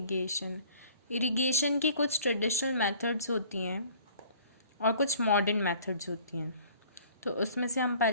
Irrigation की कुछ traditional methods होती हैं और कुछ modern methods होती हैं. तो उसमें से हम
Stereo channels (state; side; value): inverted; both; correlation -0.51